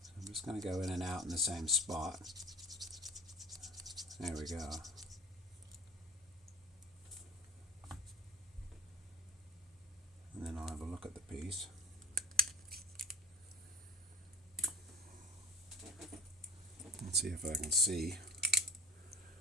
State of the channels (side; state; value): both; normal; correlation 0.36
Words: I'm just going to go in and out in the same spot. There we go. look at the piece. Let's see if I can see